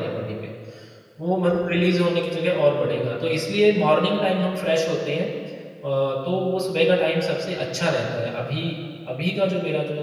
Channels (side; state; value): both; identical; correlation 1.00